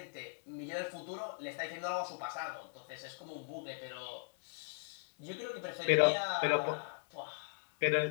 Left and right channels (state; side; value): silent; right; digital silence